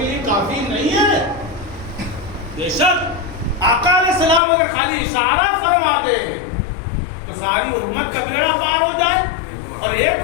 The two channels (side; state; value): right; drops out; at 4.4 s